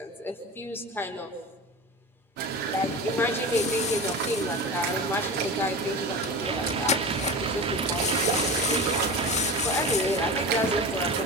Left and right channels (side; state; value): both; normal; correlation 0.29